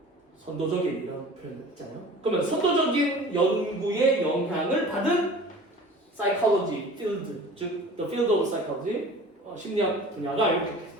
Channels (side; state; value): both; normal; correlation 0.42